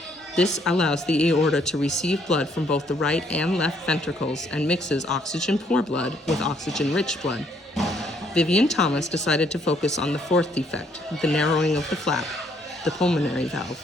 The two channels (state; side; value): normal; both; correlation 0.68